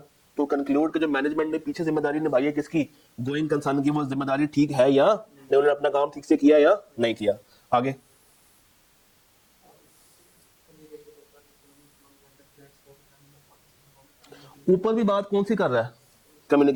टू कंक्लूड कि जो मैनेजमेंट ने पीछे जिम्मेदारी निभाई है किसकी, गोइंग कंसर्न की, वो जिम्मेदारी ठीक है या नहीं, उन्होंने अपना काम ठीक से किया या नहीं किया। आगे ऊपर भी बात कौन सी कर रहा है,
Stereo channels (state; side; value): identical; both; correlation 1.00